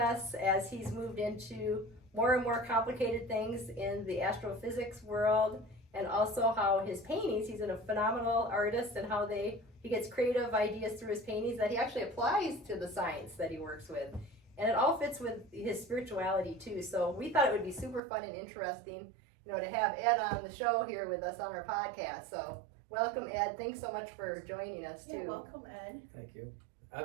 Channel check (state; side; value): drops out; left; at 18.0 s